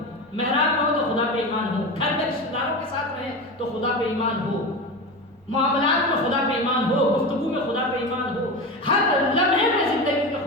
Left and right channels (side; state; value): both; normal; correlation 0.24